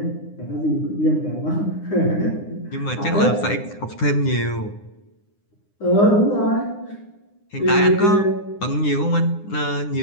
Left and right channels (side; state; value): right; late; 9.8 ms